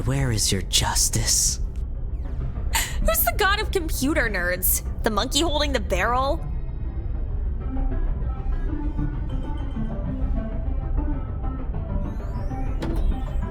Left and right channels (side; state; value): both; identical; correlation 1.00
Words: where is your justice? Who's the god of computer nerds? The monkey holding the barrel?